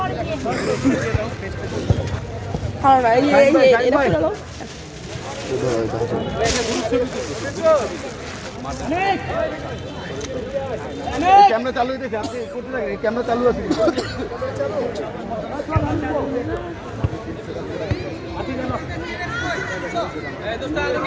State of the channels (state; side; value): identical; both; correlation 1.00